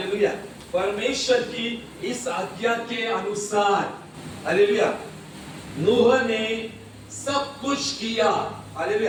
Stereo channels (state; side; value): identical; both; correlation 1.00